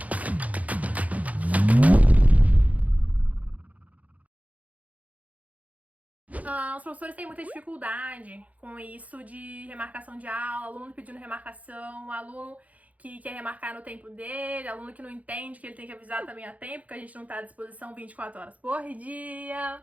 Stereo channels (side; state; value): left; late; 0.071 ms